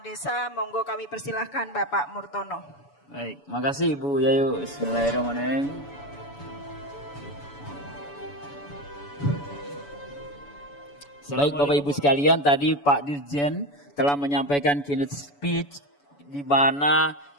monggo kami persilahkan Bapak Murtono. Baik, makasih Ibu Yayu. Bismillahirrahmanirrahim. Baik Bapak Ibu sekalian, tadi Pak Dirjen telah menyampaikan keynote speech di mana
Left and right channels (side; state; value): right; late; 7.0 ms